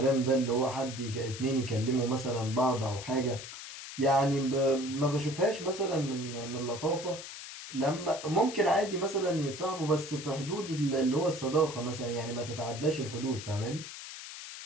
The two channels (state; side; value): noise; left; hiss, 11 dB below the sound